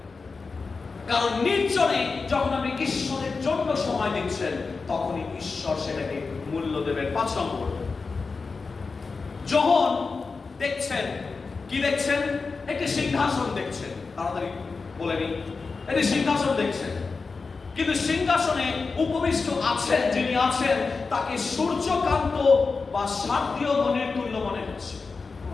কারণ নির্জনে যখন আপনি ঈশ্বরের জন্য সময় দিচ্ছেন, তখনই ঈশ্বর সেটাকে মূল্য দেবেন। 5 নম্বর, যোহন দেখছেন, কি দেখছেন? একটি সিংহাসন দেখছেন। তাড়াতাড়ি বলে নি, এটি সিংহাসন দেখছেন, কিন্তু সিংহাসনে উপবিষ্ট আছেন যিনি আছেন তাকে সূর্যকান্ত বা শারদীয় মণির তুল্য মনে হচ্ছে।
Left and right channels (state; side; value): quieter; right; 4.4 dB